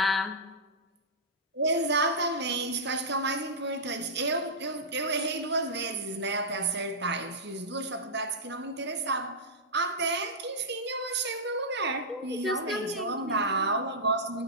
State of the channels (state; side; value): normal; both; correlation -0.13